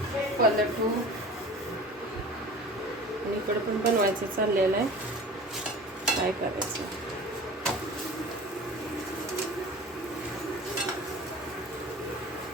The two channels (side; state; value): both; normal; correlation 0.39